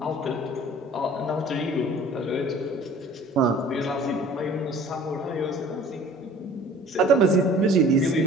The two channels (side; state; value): both; normal; correlation 0.48